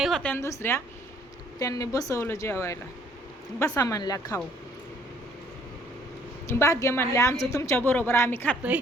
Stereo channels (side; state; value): both; normal; correlation 0.61